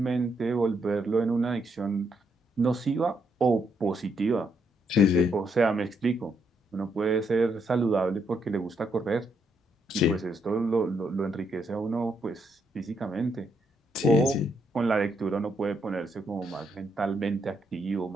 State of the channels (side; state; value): both; normal; correlation 0.76